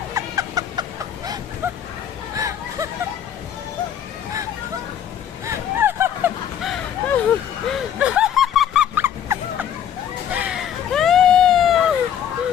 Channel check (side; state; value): right; quieter; 9.4 dB